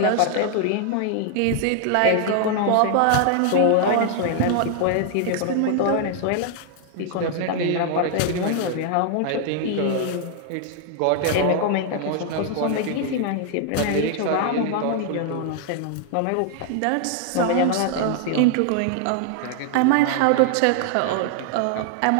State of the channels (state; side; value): different; both; correlation 0.00